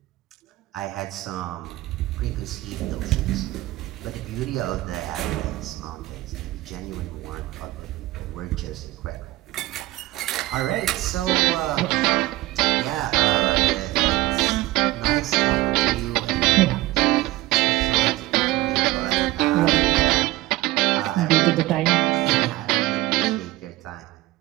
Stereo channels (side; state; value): left; quieter; 17.7 dB